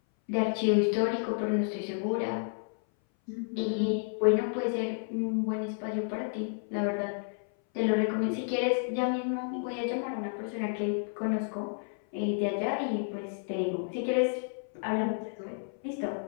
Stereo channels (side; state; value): right; silent; 57 dB below the other